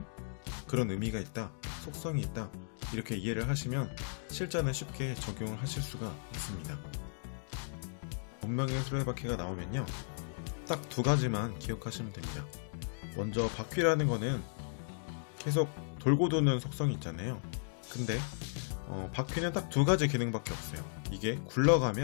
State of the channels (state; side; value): silent; right; digital silence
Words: 그런 의미가 있다, 속성이 있다, 이렇게 이해를 하시면 실전에 쉽게 적용을 하실 수가 있습니다. 운명의 수레바퀴가 나오면요 딱 두 가지만 기억하시면 됩니다. 먼저 바퀴라는 거는 계속 돌고 도는 속성이 있잖아요. 근데 바퀴는 딱 두 가지 기능밖에 없어요. 이게